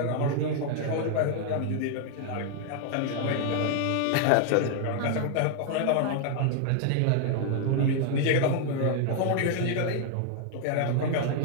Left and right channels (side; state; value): both; different; correlation 0.00